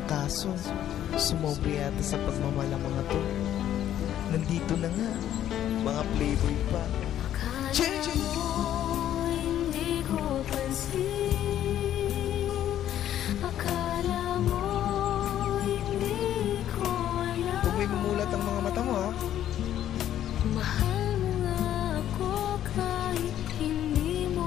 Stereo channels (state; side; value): quieter; right; 11.4 dB